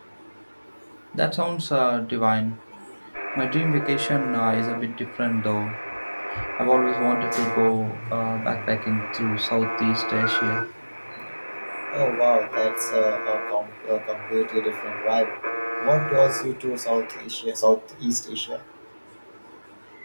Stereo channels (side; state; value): both; inverted; correlation -1.00